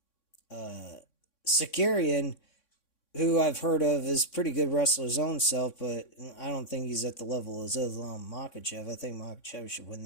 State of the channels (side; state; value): right; late; 3.6 ms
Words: Sakarian, who I've heard of, is pretty good wrestler his own self, but I don't think he's at the level of Islam Makhachev. I think Makhachev should win